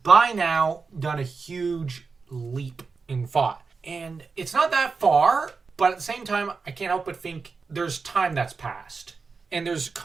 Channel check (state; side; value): quieter; left; 4.7 dB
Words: now done a huge leap in thought. And it's not that far, but at the same time, I can't help but think there's time that's passed. And there's